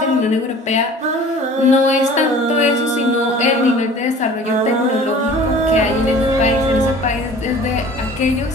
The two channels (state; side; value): normal; both; correlation 0.45